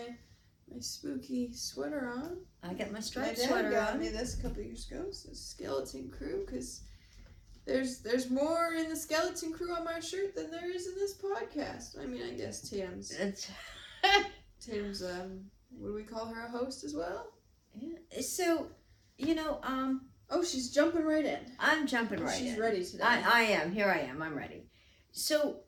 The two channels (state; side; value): identical; both; correlation 1.00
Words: spooky sweater on. I got my My striped dad sweater got on. me this a couple years ago. It's a skeleton crew because there's more in the skeleton crew on my shirt than there is in this podcast. I mean, I guess Tatum's what do we call her, a host as well? Yeah. So, Oh, she's jumping right in. I'm jumping right She's in. ready today. I am. Here I am. I'm ready. So,